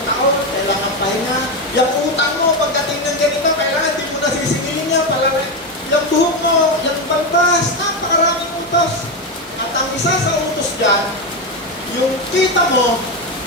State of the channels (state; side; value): normal; both; correlation 0.11